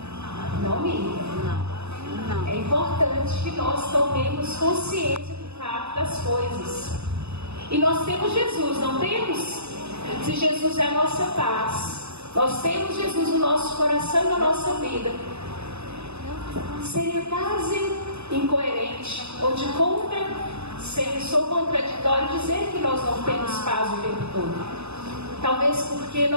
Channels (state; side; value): late; left; 0.80 ms